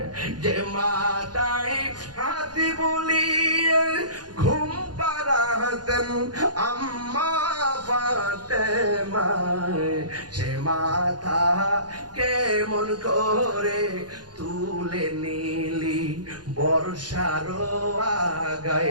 যে মাথায় হাত বুলিয়ে ঘুম পাড়াতেন আম্মা ফাতেমায় সে মাথা কেমন করে তুলে নিলি বর্ষার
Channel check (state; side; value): late; left; 0.69 ms